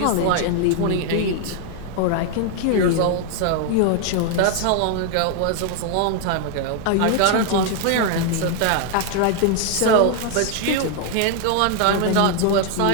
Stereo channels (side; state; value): both; different; correlation 0.00